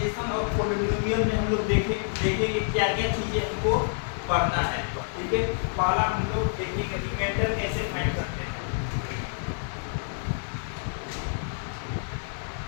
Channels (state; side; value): silent; right; digital silence